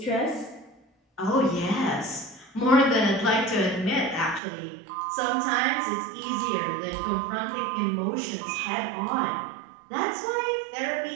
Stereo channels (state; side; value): drops out; left; at 4.4 s